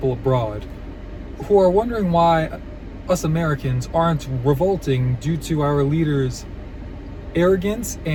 abroad, who are wondering why us Americans aren't revolting due to our leaders' arrogance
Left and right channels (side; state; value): both; identical; correlation 1.00